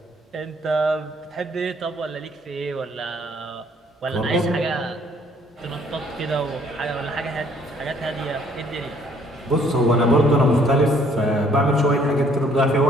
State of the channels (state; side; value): normal; both; correlation 0.62